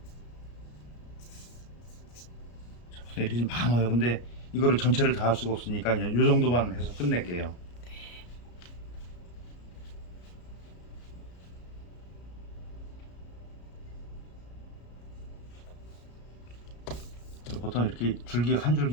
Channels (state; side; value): late; right; 34 ms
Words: 자, 보통 이렇게 좀 많아요. 근데 이거를 전체를 다 할 수가 없으니까 그냥 요 정도만 해서 끝낼게요. 보통 이렇게 줄기 한